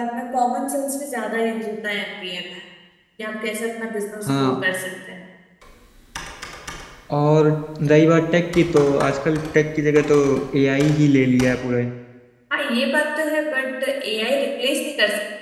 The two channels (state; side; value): identical; both; correlation 1.00